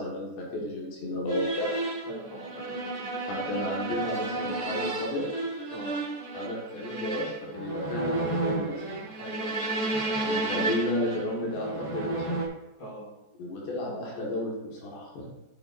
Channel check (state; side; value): late; right; 14 ms